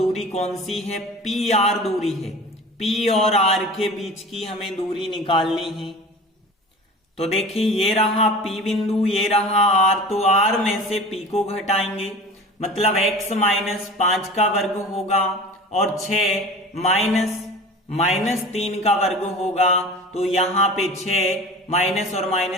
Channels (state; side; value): normal; both; correlation 0.37